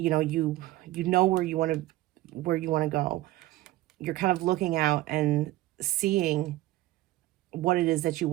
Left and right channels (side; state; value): left; quieter; 16.6 dB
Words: know where you want to go. You're kind of looking out and seeing what it is that you